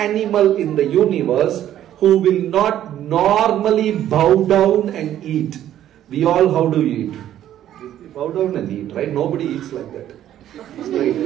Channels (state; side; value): quieter; left; 11.7 dB